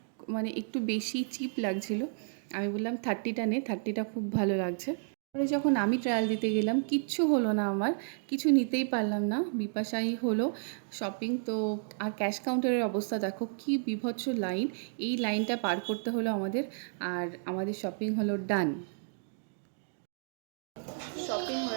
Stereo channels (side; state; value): left; silent; digital silence